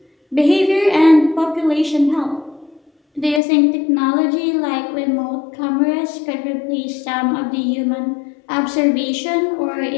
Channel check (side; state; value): right; drops out; at 3.4 s